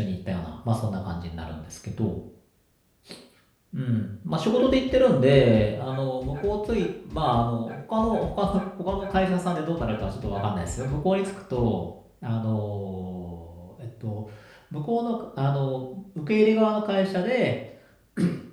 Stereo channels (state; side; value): identical; both; correlation 1.00